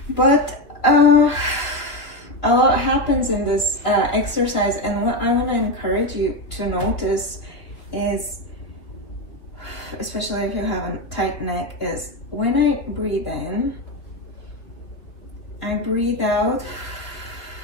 but a lot happens in this exercise, and what I want to encourage you to notice is, especially if you have a tight neck, is when I breathe in, I breathe out,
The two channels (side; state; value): right; late; 3.1 ms